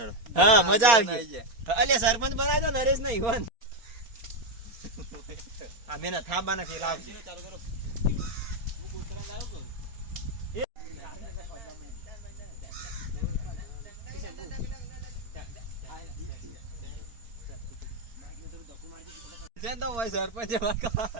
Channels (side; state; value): left; late; 4.3 ms